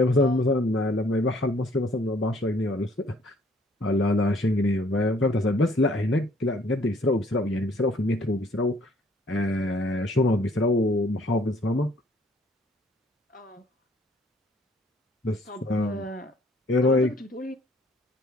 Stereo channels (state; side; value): normal; both; correlation 0.61